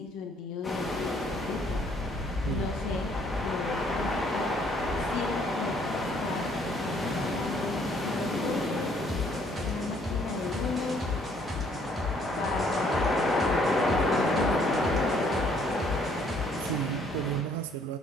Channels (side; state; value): both; normal; correlation 0.64